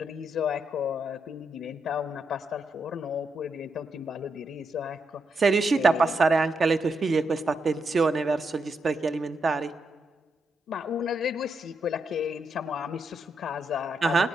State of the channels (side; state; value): both; normal; correlation 0.81